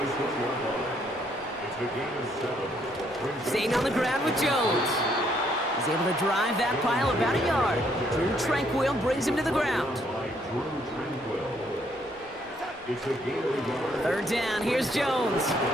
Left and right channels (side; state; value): both; normal; correlation 0.69